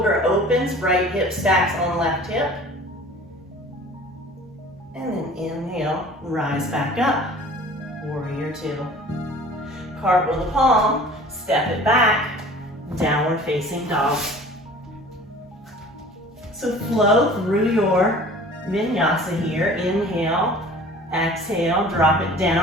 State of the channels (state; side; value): normal; both; correlation 0.45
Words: opens, right hip stacks on left hip, and then inhale, rise back up, warrior two. Cartwheel the palm, step it back, downward facing dog. So flow through your vinyasa here. Inhale, exhale, drop it